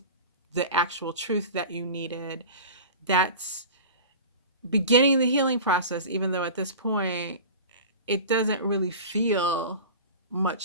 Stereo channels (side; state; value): both; inverted; correlation -0.34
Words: the actual truth that you needed. That's beginning the healing process, even though at this point it doesn't really feel